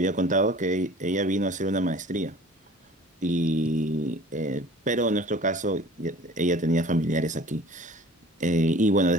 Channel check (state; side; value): normal; both; correlation 0.46